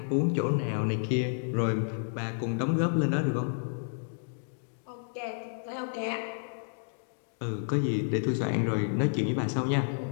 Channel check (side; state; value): right; silent; digital silence